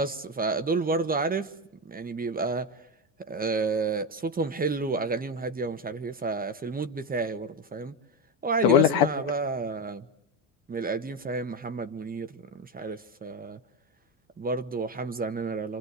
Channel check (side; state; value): both; normal; correlation 0.15